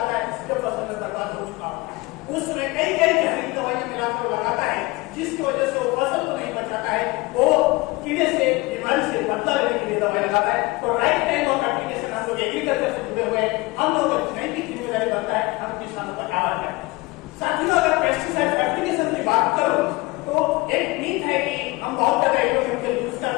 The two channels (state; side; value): quieter; right; 22.7 dB